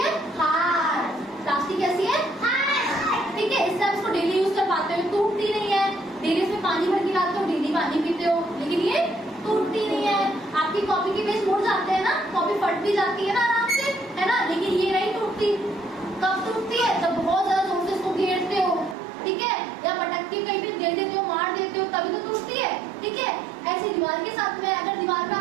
हार्ड। प्लास्टिक कैसी है? हार्ड, ठीक है। इससे आप इसको डेली यूज कर पाते हो, टूटती नहीं है। डेली इसमें पानी भर के लाते हो, डेली पानी पीते हो, लेकिन ये टूटती नहीं है। आपकी कॉपी के पेज मुड़ जाते हैं ना, कॉपी फट भी जाती है ना आराम से, है ना, लेकिन ये नहीं टूटती। कब टूटती है? जब बहुत ज्यादा जोर से इसको घेरते हो, ठीक है, या पटक के कहीं पे दे देते हो, मार देते हो, तभी तो टूटती है, ठीक है। ऐसी दीवार के साथ में, अगर दीवार पे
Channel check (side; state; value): left; drops out; at 18.9 s